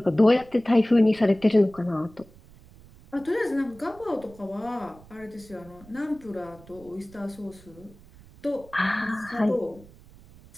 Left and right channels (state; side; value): noise; right; rumble, 23 dB below the sound